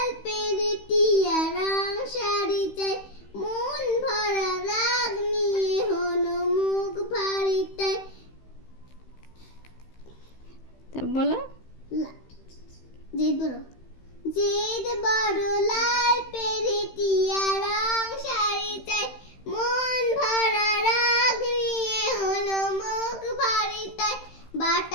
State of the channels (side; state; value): right; late; 15 ms